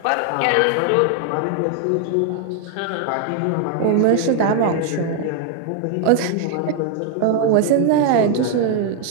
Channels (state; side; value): different; both; correlation 0.00